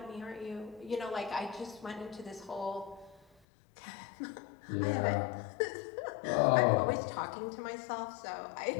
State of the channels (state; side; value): drops out; right; at 3.2 s